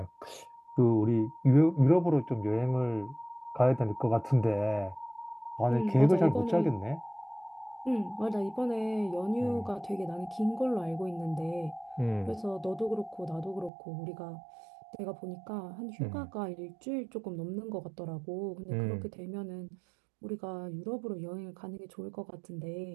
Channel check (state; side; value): drops out; left; at 13.7 s